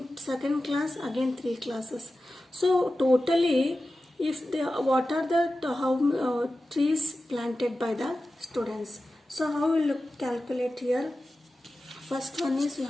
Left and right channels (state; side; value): normal; both; correlation 0.94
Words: second class again 3 classes. So totally, if they, what are the trees planted by the students? So how will you calculate here? First one is, you